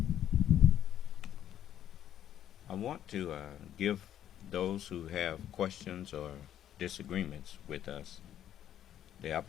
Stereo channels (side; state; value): right; quieter; 10.8 dB